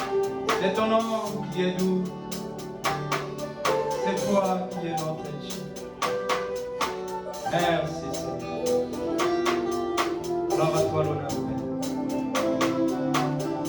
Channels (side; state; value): both; identical; correlation 1.00